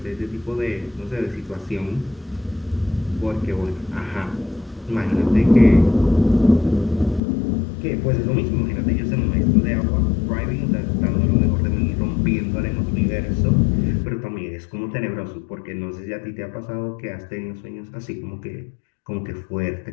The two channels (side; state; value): right; drops out; at 7.2 s